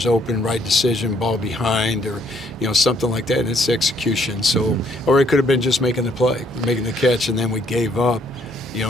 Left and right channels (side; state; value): both; normal; correlation 0.66